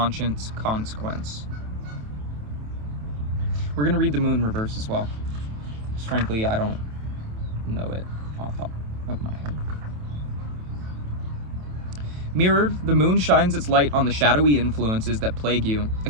consequence. We're going to read the Moon reverse as well. Just frankly, I don't know it off the top of my head. Mirrored, the Moon shines its light on the shadowy influences that plague you,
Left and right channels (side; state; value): left; late; 27 ms